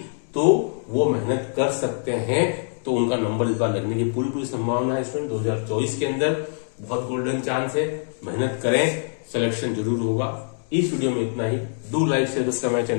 तो वो मेहनत कर सकते हैं, तो उनका नंबर इस बार लगने की पूरी संभावना है स्टूडेंट। 2024 के अंदर बहुत गोल्डन चांस है, मेहनत करें, सिलेक्शन जरूर होगा। इस वीडियो में इतना ही। Do like share subscribe my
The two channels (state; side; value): silent; right; digital silence